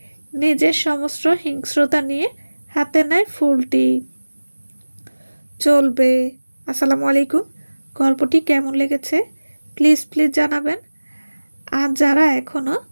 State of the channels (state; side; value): inverted; both; correlation -1.00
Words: নিজের সমস্ত হিংস্রতা নিয়ে হাতে নেয় ফুলটি। চলবে। আসসালামু আলাইকুম। গল্পটি কেমন লেগেছে প্লিজ জানাবেন। আর যারা এখনও